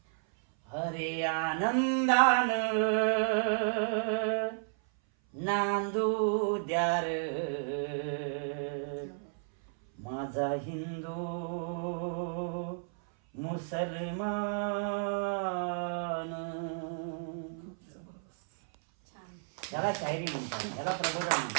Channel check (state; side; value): silent; left; 56 dB below the other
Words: हरे आनंदान नांदू द्यार माझा हिंदू मुसलमान. याला शायरी म्हणतात, याला प्रबोधन